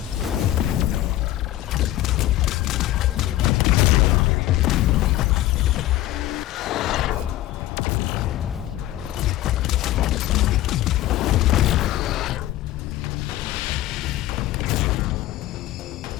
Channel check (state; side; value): quieter; right; 14.8 dB